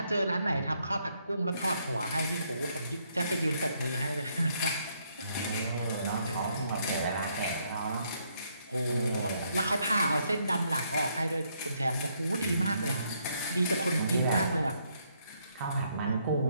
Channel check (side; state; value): both; inverted; correlation -0.72